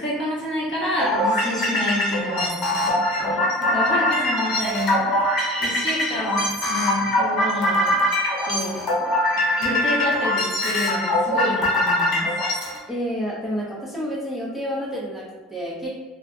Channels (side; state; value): both; normal; correlation 0.38